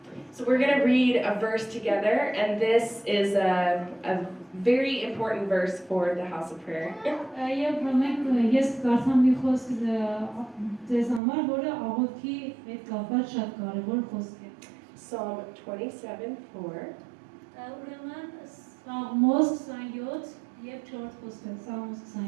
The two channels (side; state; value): left; drops out; at 11.2 s